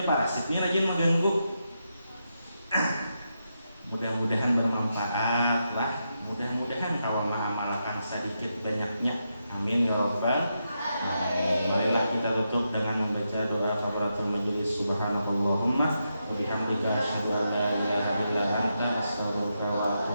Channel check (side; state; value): both; inverted; correlation -0.84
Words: parasit ini rajin mengganggu. Mudah-mudahan bermanfaat lah. Mudah-mudahan kalau mengamalkan sedikit banyaknya. Amin ya rabbal alamin. Marilah kita tutup dengan membaca doa kafaratul majelis. Subhanakallahumma wa bihamdika asyhadu an la ilaha illa anta astaghfiruka wa